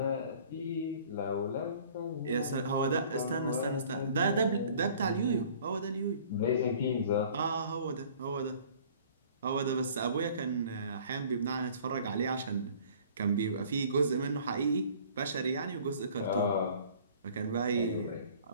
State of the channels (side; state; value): both; inverted; correlation -0.51